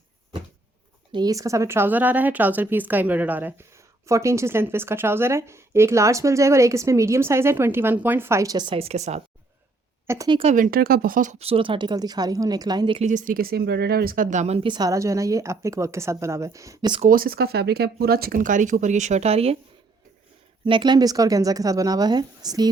ये इसका साथ में ट्राउज़र आ रहा है। ट्राउज़र भी इसका एम्ब्रॉयडर्ड आ रहा है। 14 इंचज़ लेंथ पे इसका ट्राउज़र है। एक लार्ज मिल जाएगा और एक इसमें मीडियम साइज़ है 21.5 चेस्ट साइज़ के साथ। एथनिक का विंटर का बहुत खूबसूरत आर्टिकल दिखा रही हूँ। नेकलाइन देख लीजिए इस तरीके से एम्ब्रॉयडर्ड है और इसका दामन भी सारा जो है ना ये एप्लिक वर्क के साथ बना हुआ है। विस्कोस इसका फैब्रिक है, पूरा चिकनकारी के ऊपर ये शर्ट आ रही है। नेकलाइन भी इसका ऑर्गेन्जा के साथ बना हुआ है।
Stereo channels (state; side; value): quieter; left; 3.2 dB